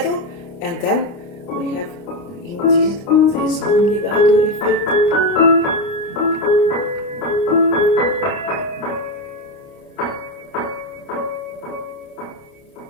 and then we have indeed this non-legato effect.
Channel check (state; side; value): late; right; 29 ms